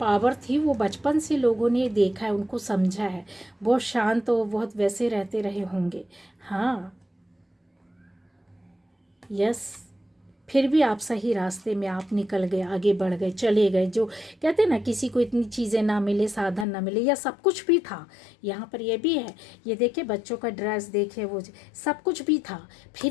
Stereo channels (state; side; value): drops out; right; at 16.7 s